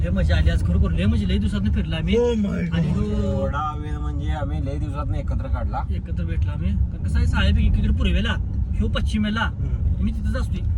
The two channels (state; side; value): identical; both; correlation 1.00